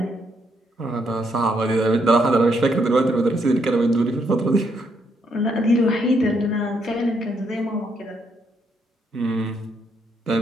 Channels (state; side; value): normal; both; correlation 0.75